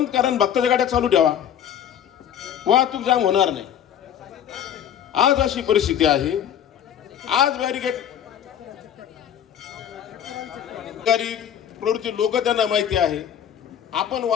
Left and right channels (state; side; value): quieter; right; 9.5 dB